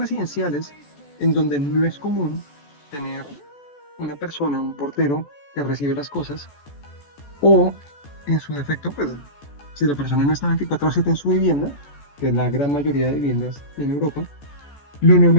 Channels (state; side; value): late; right; 14 ms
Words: en donde no es común tener una persona, un portero que recibe las cosas, o en su defecto, pues si la persona no está 24/7 en su vivienda, que es la gran mayoría de viviendas en Europa, lo